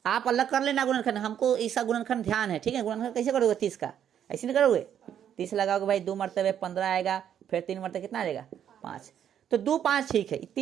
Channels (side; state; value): left; quieter; 9.5 dB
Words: आप अलग कर लेना गुणनखंड, हमको इसका गुणनखंड ध्यान है, ठीक है? गुणनखंड कैसे करोगे 30 का? ऐसे नहीं करोगे। 30 लगाओगे भाई, 2 मरतबे 15 आएगा, फिर 3 मरतबे कितना आएगा? 5। तो 2 5 ठीक है,